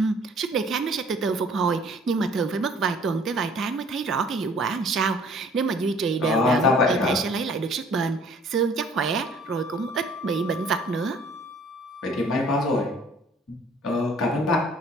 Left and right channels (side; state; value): both; normal; correlation 0.54